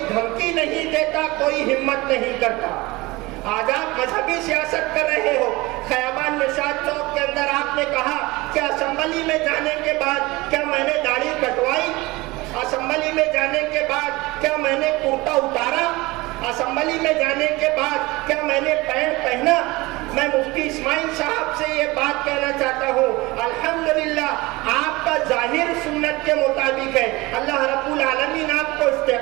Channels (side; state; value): left; quieter; 21.7 dB